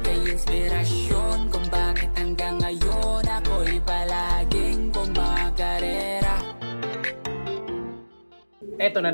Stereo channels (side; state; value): both; inverted; correlation -1.00